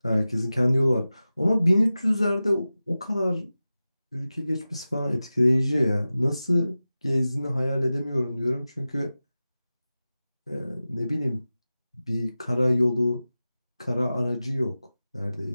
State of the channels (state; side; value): inverted; both; correlation -0.95